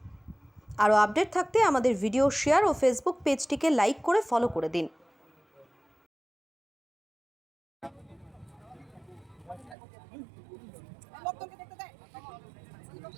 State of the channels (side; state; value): left; drops out; at 9.8 s